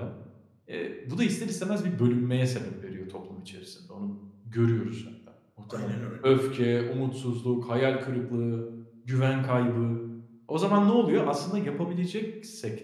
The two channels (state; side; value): identical; both; correlation 1.00